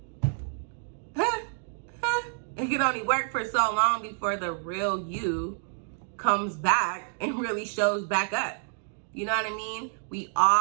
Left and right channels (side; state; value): left; silent; 55 dB below the other